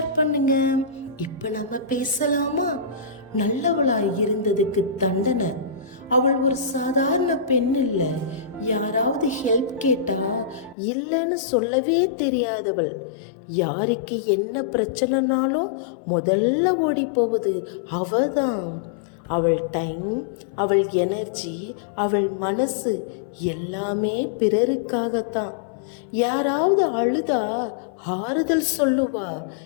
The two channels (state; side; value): drops out; right; at 10.8 s